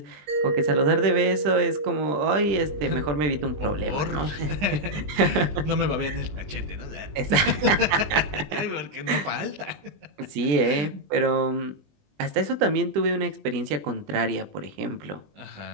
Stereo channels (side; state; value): left; late; 20 ms